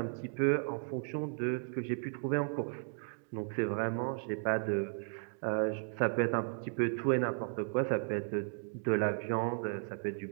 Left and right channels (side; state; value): left; silent; 54 dB below the other